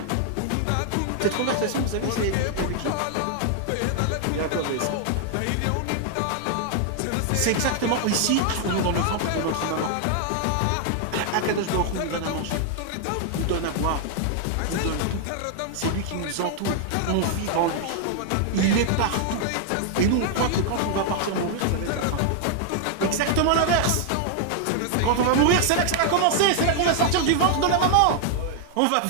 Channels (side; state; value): both; different; correlation 0.00